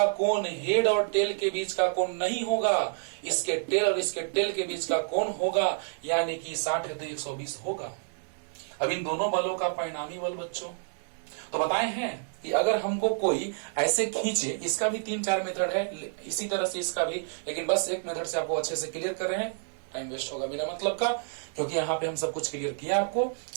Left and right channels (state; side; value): silent; left; 59 dB below the other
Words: कोण हेड और टेल के बीच का कोण नहीं होगा, इसके टेल और इसके टेल के बीच का कोण होगा, यानी कि 60 है तो 120 होगा। अब इन दोनों बलों का परिणामी बल बच्चों तो बताए हैं कि अगर हमको कोई ऐसे खींचे, इसका भी 3-4 मेथड है, इसी तरह से इसका भी, लेकिन बस एक मेथड से आपको अच्छे से क्लियर कर रहे हैं, टाइम वेस्ट होगा बिना मतलब का, क्योंकि यहाँ पे हम सब कुछ क्लियर किया आपको।